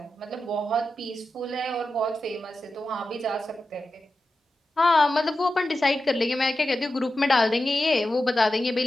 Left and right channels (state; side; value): normal; both; correlation 0.91